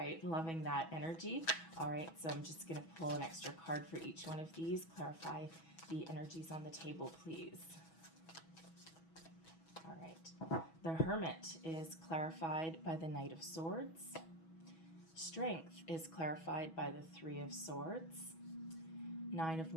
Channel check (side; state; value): right; late; 6.2 ms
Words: loving that energy. All right, so I'm just going to pull an extra card for each one of these. Clarify the energies on the table, please. All right. The Hermit is clarified by the Knight of Swords. Strength is clarified by the Three of Swords. Nine of